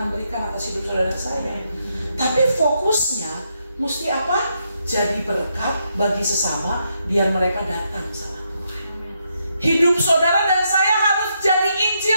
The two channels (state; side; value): inverted; both; correlation -0.79